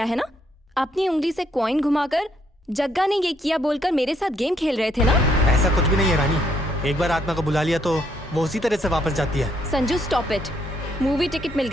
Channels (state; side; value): normal; both; correlation 0.71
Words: है ना? अपनी उंगली से कॉइन घुमाकर जग्गा ने ये किया बोलकर मेरे साथ गेम खेल रहे थे ना? ऐसा कुछ भी नहीं है रानी। एक बार आत्मा को बुला लिया तो वो उसी तरह से वापस जाती है। Sanju stop it. Movie ticket मिल